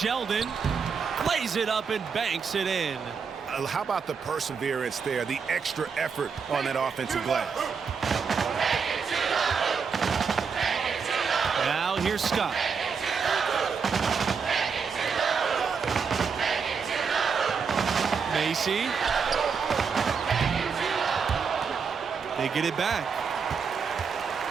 Plays it up and banks it in. How about the perseverance there, the extra effort on that offensive glass? Now here's Scott. Macy. They get it back.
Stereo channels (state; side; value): quieter; left; 5.9 dB